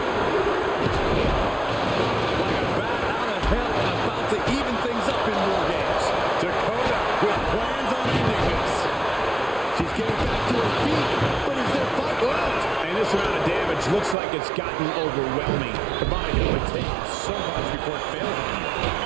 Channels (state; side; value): drops out; left; at 14.2 s